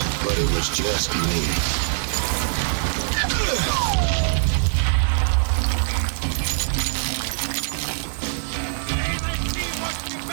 but it was just me. Hey, let's see what you're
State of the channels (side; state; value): left; silent; digital silence